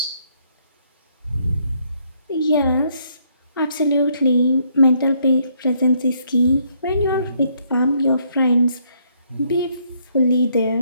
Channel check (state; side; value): inverted; both; correlation -0.70